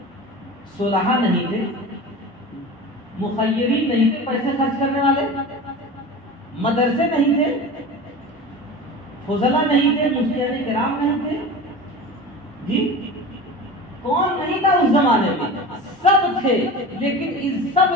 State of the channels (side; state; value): both; normal; correlation 0.33